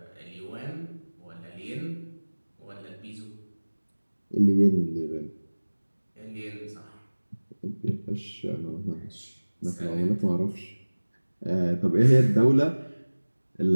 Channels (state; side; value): inverted; both; correlation -1.00